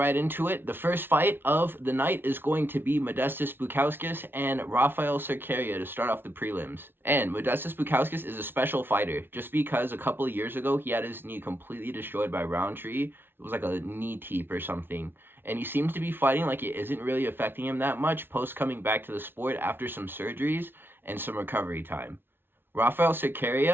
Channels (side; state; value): left; late; 0.10 ms